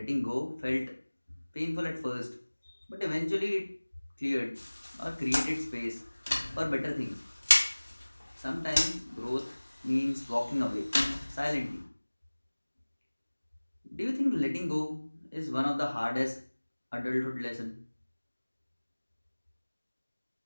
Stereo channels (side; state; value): both; inverted; correlation -1.00